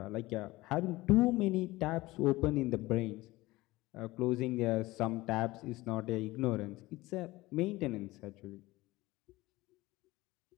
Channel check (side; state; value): right; quieter; 19.5 dB